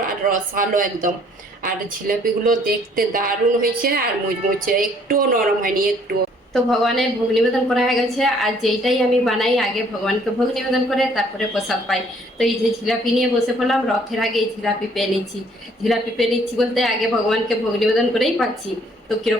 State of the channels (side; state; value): both; normal; correlation 0.61